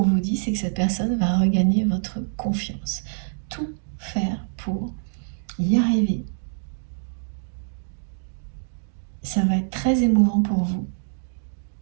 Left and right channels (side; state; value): left; silent; digital silence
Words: vous dit, c'est que cette personne va regagner votre confiance. Tout faire pour y arriver. Ça va être très émouvant pour vous.